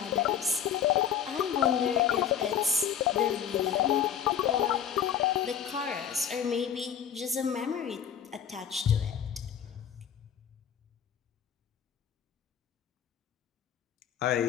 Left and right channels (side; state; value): right; quieter; 8.7 dB